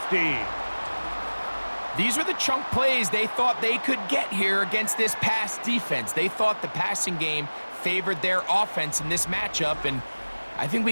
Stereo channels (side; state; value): both; inverted; correlation -1.00